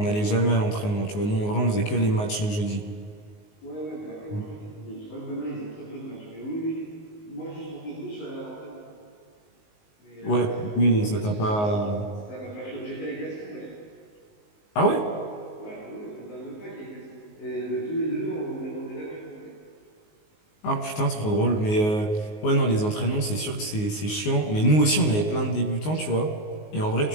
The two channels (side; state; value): right; late; 19 ms